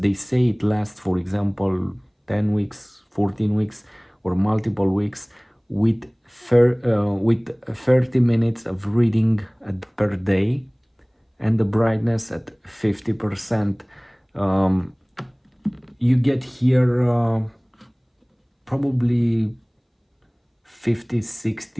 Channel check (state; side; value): identical; both; correlation 1.00